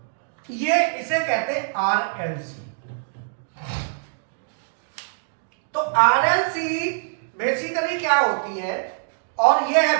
ये इसे कहते हैं RLC। तो RLC बेसिकली क्या होती है और ये है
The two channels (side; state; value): left; silent; digital silence